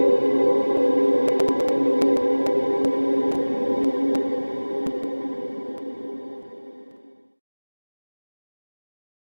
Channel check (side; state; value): both; inverted; correlation -1.00